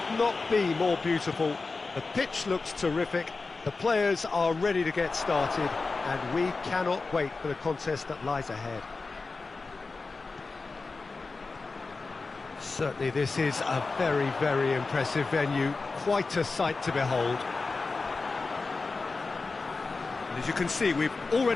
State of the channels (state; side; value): quieter; right; 4.0 dB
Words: not be more beautiful. The pitch looks terrific. The players are ready to get started, and we cannot wait for the contest that lies ahead. Certainly this is a very, very impressive venue, quite a sight to behold. And as you can see, we've